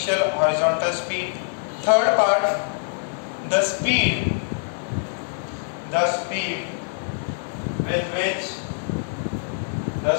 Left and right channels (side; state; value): right; silent; digital silence